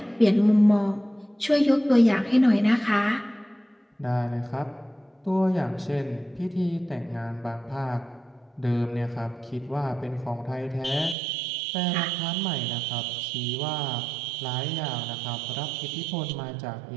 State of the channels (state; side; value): drops out; left; at 11.2 s